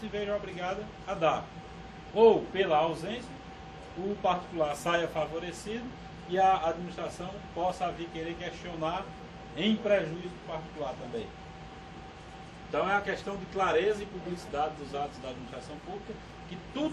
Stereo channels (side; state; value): both; identical; correlation 1.00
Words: veja obrigada a dar. Ou, pela ausência, o particular saia favorecido e a administração possa vir querer questionar em prejuízo do particular também. Então é a questão de clareza e publicidade dos atos da administração pública, que